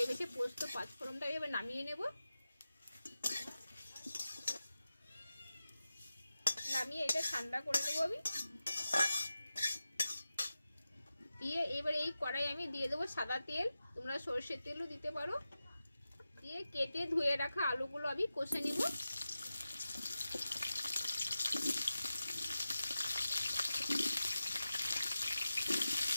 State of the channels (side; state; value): both; inverted; correlation -0.94